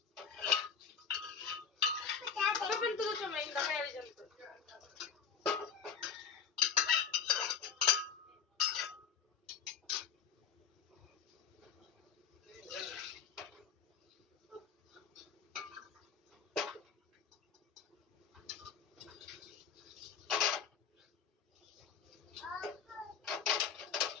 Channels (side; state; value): right; quieter; 7.1 dB